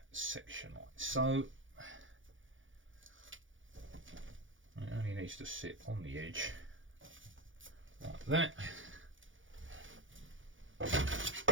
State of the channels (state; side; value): late; left; 0.57 ms